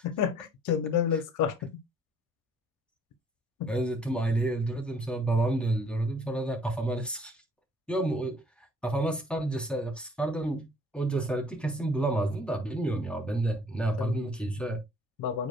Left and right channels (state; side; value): normal; both; correlation 0.58